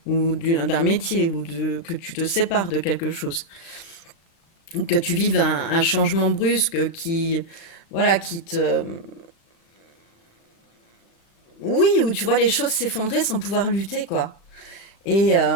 ou d'un métier, que tu te sépares de quelque chose. Que tu vives un changement brusque voilà, qui te... Oui, où tu vois les choses s'effondrer sans pouvoir lutter, quoi. Et,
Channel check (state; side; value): late; right; 36 ms